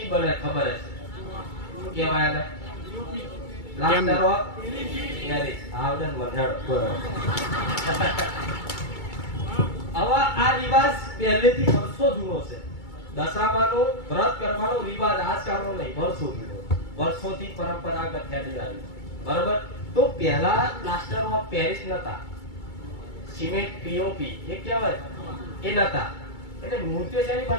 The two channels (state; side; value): late; right; 2.3 ms